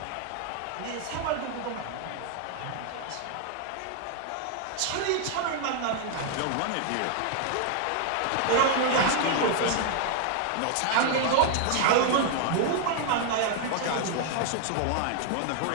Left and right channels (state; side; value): different; both; correlation 0.00